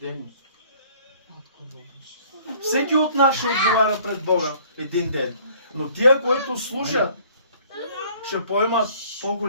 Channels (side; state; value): both; inverted; correlation -0.56